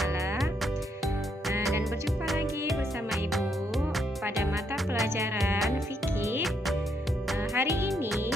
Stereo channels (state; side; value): normal; both; correlation 0.75